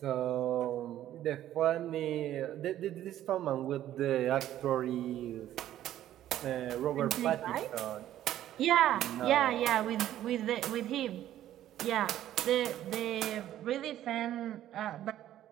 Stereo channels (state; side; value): quieter; left; 12.5 dB